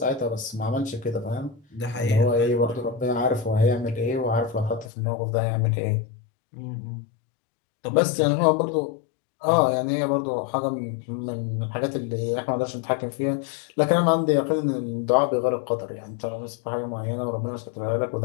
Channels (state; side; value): drops out; right; at 4.9 s